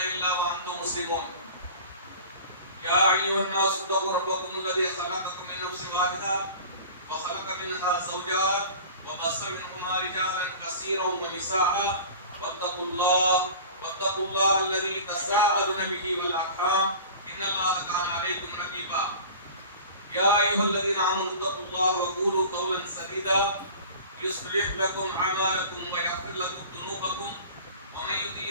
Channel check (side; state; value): both; inverted; correlation -0.39